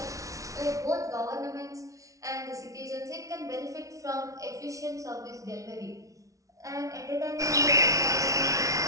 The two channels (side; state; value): left; late; 0.16 ms